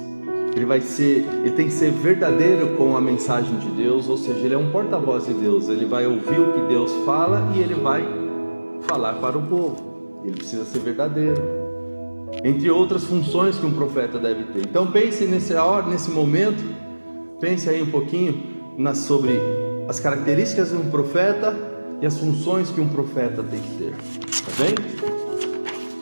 Ele tem que ser verdadeiro com a mensagem de Deus, ou seja, ele é um porta-voz de Deus. Ele vai ouvir o que Deus fala e ele vai falar para o povo. Ele precisa ser verdadeiro, entre outras funções que um profeta deve ter. Então pense nesse momento, pense aí um pouquinho sobre as características de um profeta e as funções que um profeta tem que ter, tá bem?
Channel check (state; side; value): inverted; both; correlation -1.00